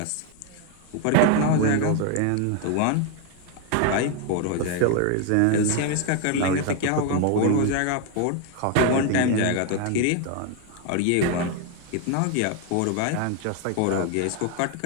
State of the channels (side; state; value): both; different; correlation 0.01